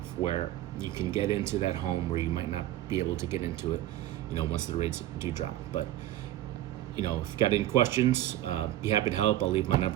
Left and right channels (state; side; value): quieter; left; 14.0 dB